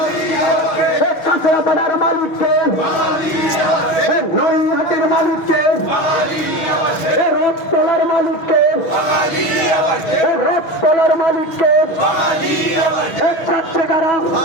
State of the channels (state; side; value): late; right; 6.4 ms